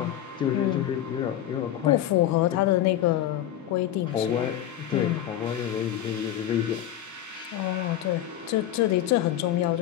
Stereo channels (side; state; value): right; quieter; 11.8 dB